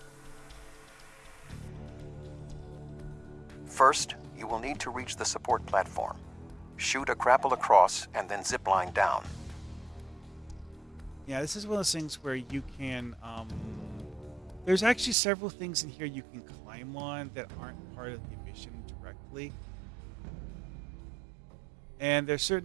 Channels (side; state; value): left; drops out; at 15.2 s